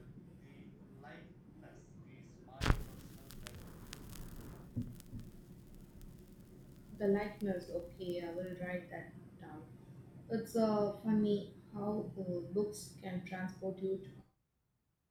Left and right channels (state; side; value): identical; both; correlation 1.00